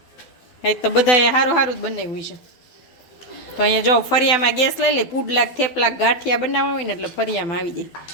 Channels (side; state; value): right; late; 12 ms